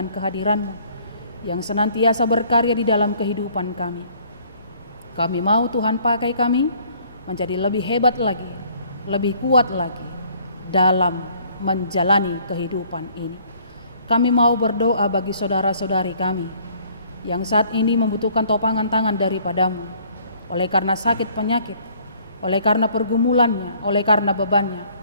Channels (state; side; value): inverted; both; correlation -0.59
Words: kehadiran-Mu yang senantiasa berkarya di dalam kehidupan kami. Kami mau Tuhan pakai kami menjadi lebih hebat lagi, lebih kuat lagi dalam menjalani kehidupan ini. Kami mau berdoa bagi saudara-saudari kami yang saat ini membutuhkan topangan tangan daripada-Mu, oleh karena sakit penyakit, oleh karena pergumulannya, oleh karena bebannya,